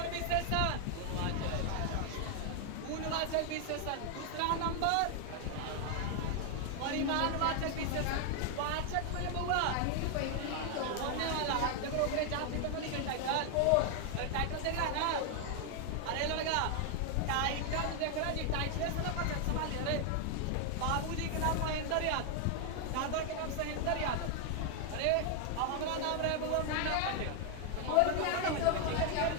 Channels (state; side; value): different; both; correlation 0.01